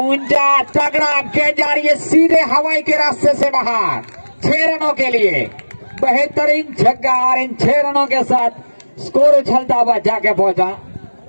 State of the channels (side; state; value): both; inverted; correlation -1.00